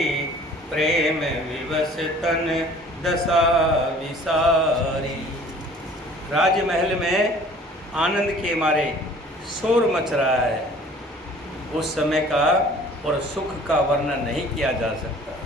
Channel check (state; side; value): normal; both; correlation 0.50